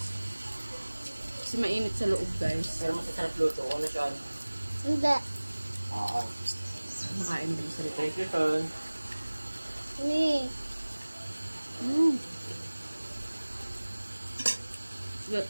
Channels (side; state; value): both; inverted; correlation -1.00